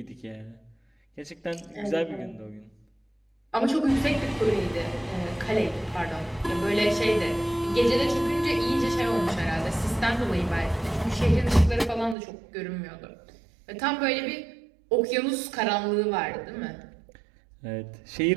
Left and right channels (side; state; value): left; drops out; at 12.2 s